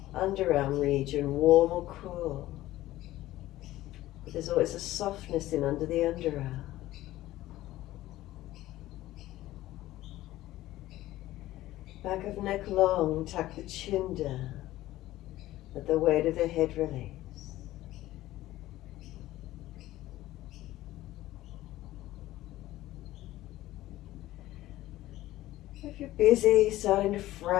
Underarm region, warm or cool. But there's always a softness in under the underarm. Back of neck long, tuck the chin down. Let the weight of the head release. If you're busy, starting to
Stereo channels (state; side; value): quieter; right; 15.7 dB